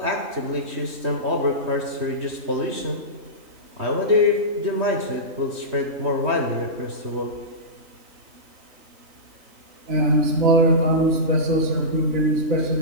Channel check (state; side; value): late; left; 3.2 ms